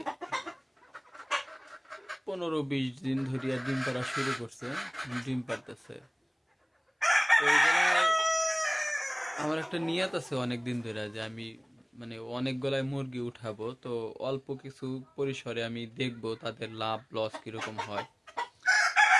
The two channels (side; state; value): both; identical; correlation 1.00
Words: 15-20 দিন ধরিয়া ডিম পাড়া শুরু করছে, ডিম পাড়তেছে। তো এইগুলায় আমার একটা নিয়ত আছে অনেক দিন ধরে যে আমি অনেকগুলাই মুরগি উঠাবো, তো অল্প কিছু পরিসরে আমি দেখবো তাদের লাভ লস কিরকম হয়।